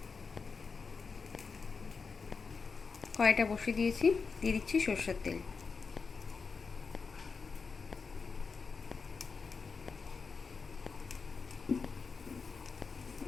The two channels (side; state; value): right; quieter; 5.0 dB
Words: কড়াইটা বসিয়ে দিয়েছি, দিয়ে দিচ্ছি সরষের তেল।